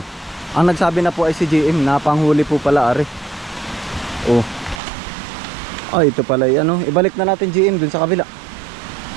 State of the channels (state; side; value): drops out; left; at 4.8 s